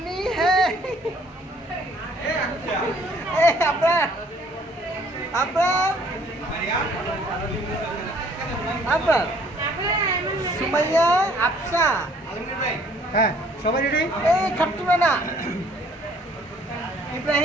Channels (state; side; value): normal; both; correlation 0.59